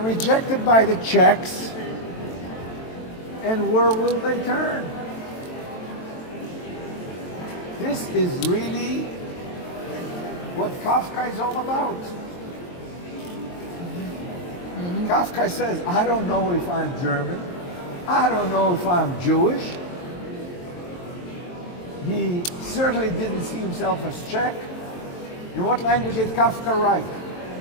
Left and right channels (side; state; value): right; late; 23 ms